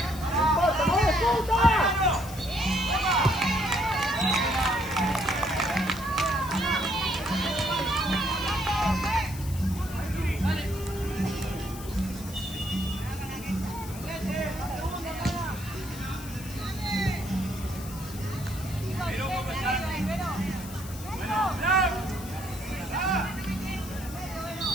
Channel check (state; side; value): noise; left; hiss, 15 dB below the sound